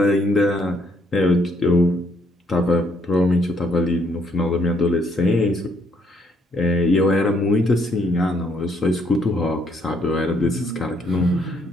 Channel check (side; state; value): both; normal; correlation 0.69